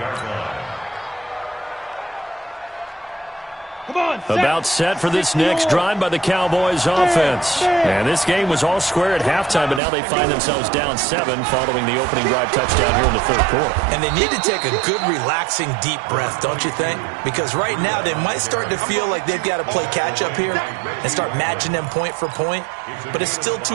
line. About set for this next drive by the Cowboys offense. And this game was all square at halftime, but now they find themselves down 7 following the opening drive touchdown here in the 3rd quarter. And they need to take a good, relaxing, deep breath, don't you think? Because right now they might start to feel like they've got to play catch-up here and start matching them point for point. But it's still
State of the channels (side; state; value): left; drops out; at 9.8 s